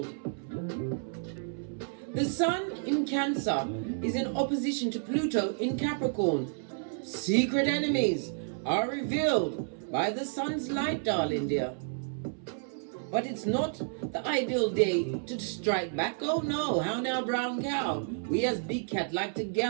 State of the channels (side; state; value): left; silent; 57 dB below the other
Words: The Sun in Cancer is in opposition to Pluto in Capricorn. Secret enemies are revealed by the Sun's light, darling dear. But it's not the ideal day to strike back. Oh no, how now, brown cow? We as Big Cat like to